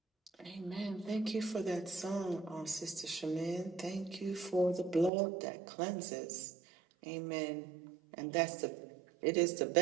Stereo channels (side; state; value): left; drops out; at 5.1 s